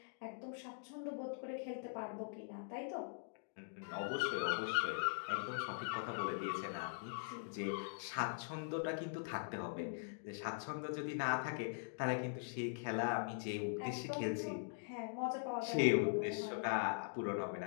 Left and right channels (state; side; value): silent; right; digital silence